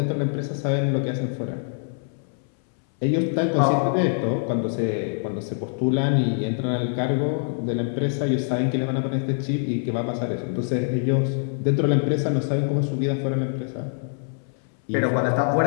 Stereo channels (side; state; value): right; silent; 62 dB below the other